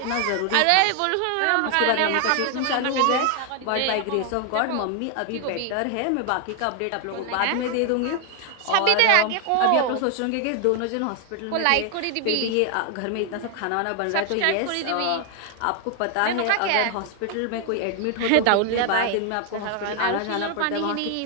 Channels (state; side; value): different; both; correlation 0.00